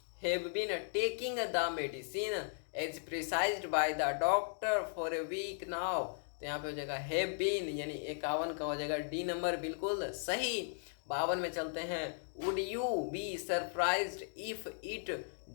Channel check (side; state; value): right; silent; digital silence